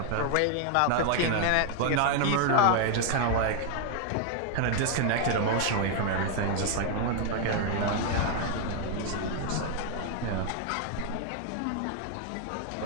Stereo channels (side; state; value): both; different; correlation 0.00